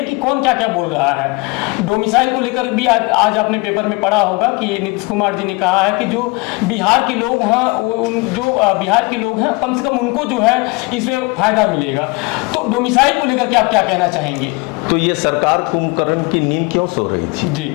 कि कौन क्या क्या बोल रहा है। डोमिसाइल को लेकर भी आज आपने पेपर में पढ़ा होगा कि नीतीश कुमार जी ने कहा है कि जो बिहार के लोग हैं, जो बिहार के लोग हैं, कम से कम उनको जो है इसमें फायदा मिलेगा। तो डोमिसाइल को लेकर के आप क्या कहना चाहेंगे? तो ये सरकार कुंभकर्ण की नींद क्यों सो रही थी जी?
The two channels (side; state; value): right; quieter; 26.5 dB